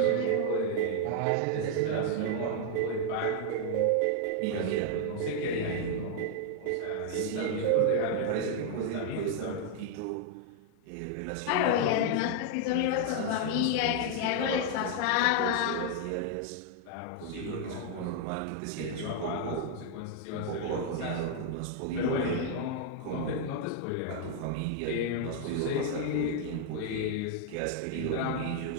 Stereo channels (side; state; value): both; different; correlation 0.00